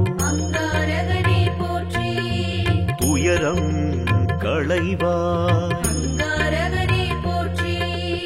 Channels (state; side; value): identical; both; correlation 1.00